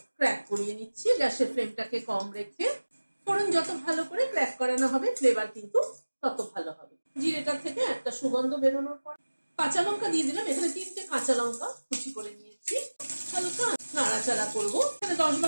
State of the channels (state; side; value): inverted; both; correlation -1.00